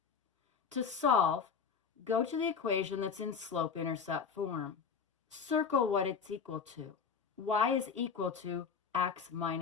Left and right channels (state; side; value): quieter; right; 6.1 dB